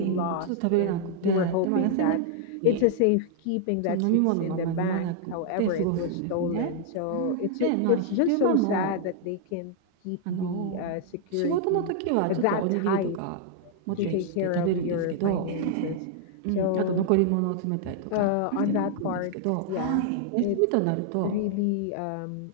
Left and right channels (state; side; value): different; both; correlation -0.01